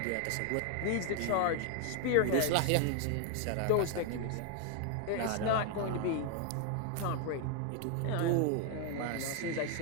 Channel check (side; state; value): both; different; correlation 0.00